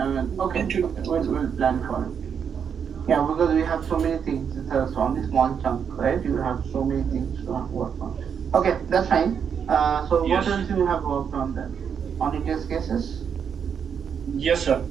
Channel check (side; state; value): left; quieter; 7.3 dB